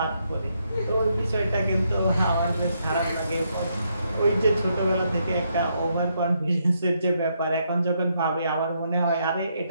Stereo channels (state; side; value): inverted; both; correlation -0.77